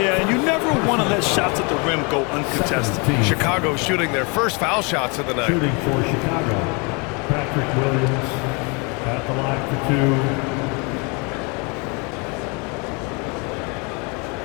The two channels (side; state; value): right; quieter; 31.3 dB